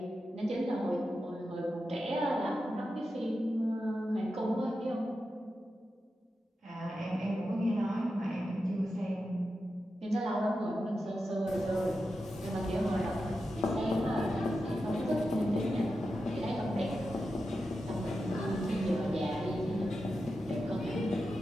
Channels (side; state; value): both; normal; correlation 0.90